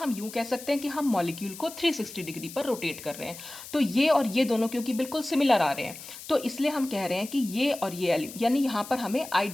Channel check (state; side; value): noise; left; hiss, 14 dB below the sound